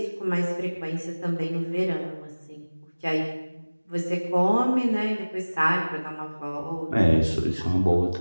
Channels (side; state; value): both; inverted; correlation -1.00